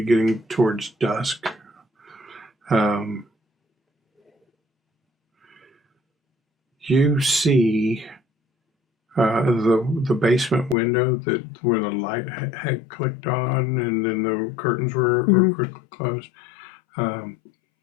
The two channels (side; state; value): right; drops out; at 10.8 s